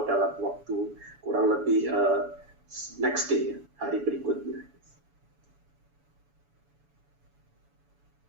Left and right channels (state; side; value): late; left; 7.0 ms